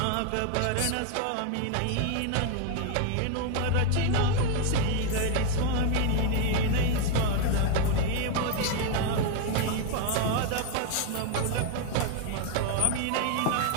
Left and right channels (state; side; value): different; both; correlation 0.01